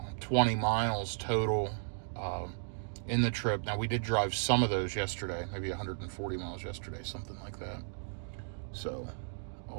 miles total in the trip. Now, we did drive some of those yesterday, maybe 140 miles yesterday, something like that. So,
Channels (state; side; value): silent; left; digital silence